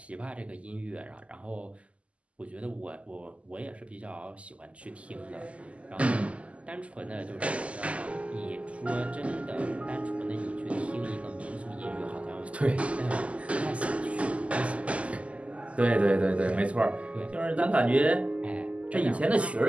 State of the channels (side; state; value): left; late; 0.062 ms